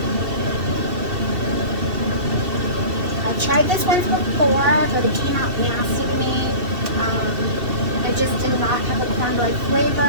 tried this once before, but it came out nasty to me. It just did not have a cornbread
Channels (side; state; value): left; late; 2.7 ms